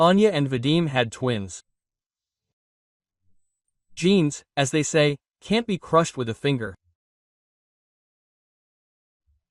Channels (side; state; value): both; identical; correlation 1.00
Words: and Vadim had twins. Genes, as they say, can't be crushed with a finger.